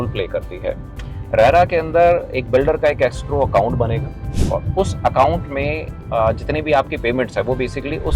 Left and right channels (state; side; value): identical; both; correlation 1.00